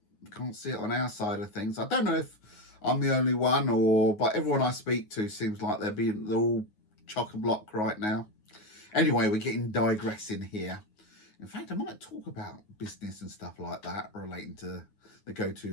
can't see it on our side of things. I don't know if I'm the only one, but everyone I speak to seems like they're all chock-a-block right now. Anyway, we're getting digressing here. In fact, I might talk about business and stuff like that relating to the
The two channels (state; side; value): late; right; 9.5 ms